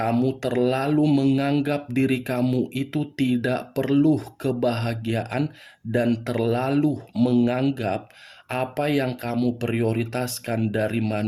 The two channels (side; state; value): both; identical; correlation 1.00